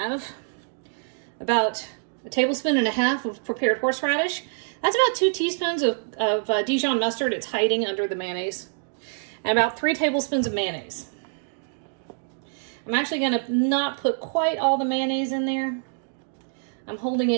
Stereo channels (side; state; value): left; silent; digital silence